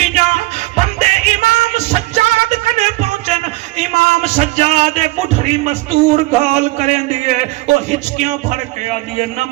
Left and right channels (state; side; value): quieter; left; 20.0 dB